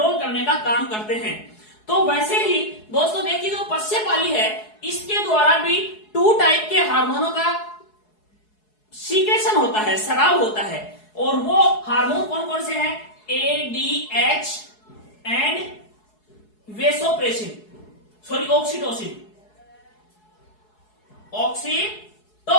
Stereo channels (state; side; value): late; right; 4.7 ms